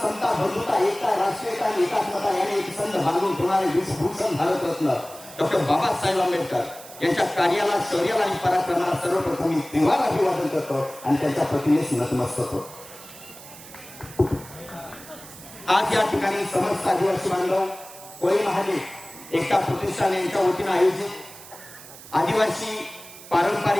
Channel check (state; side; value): noise; right; hiss, 17 dB below the sound